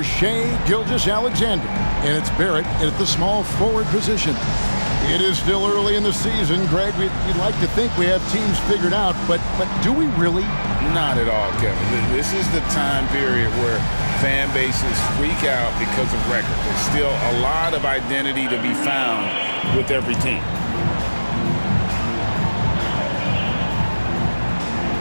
Shai Gilgeous-Alexander. And it's Barrett at the small forward position. It is still early in the season, Greg. We'd like to think we have teams figured out, but do we really? Not at all, Kevin. This is the time period where fan bases freak out because of record. There's still a lot of identity to be found with every team.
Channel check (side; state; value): both; inverted; correlation -1.00